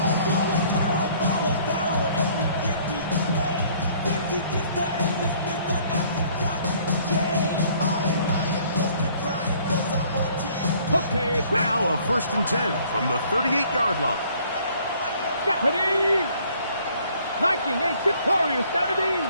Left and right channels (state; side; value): inverted; both; correlation -0.59